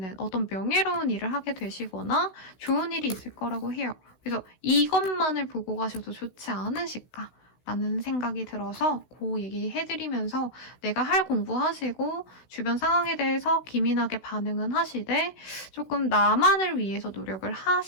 어떤 명예로운 일을 하게 되시거나 좋은 일이 있을 거라고 해요. 그래서 이것만을 보고 가셔도 좋지 않으실까? 라는 생각이 들어서 그 얘기해드리면서 내가 할 공부하시고 주변 상황에 대해서 기민하게 반응은 하시되 조금 나만을 위해서 노력을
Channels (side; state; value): right; late; 16 ms